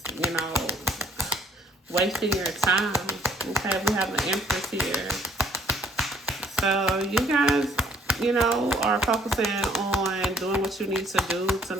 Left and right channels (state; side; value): normal; both; correlation 0.62